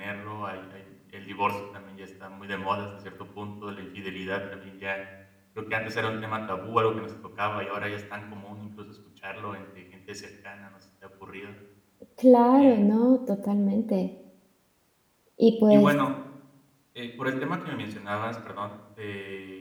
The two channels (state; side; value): identical; both; correlation 1.00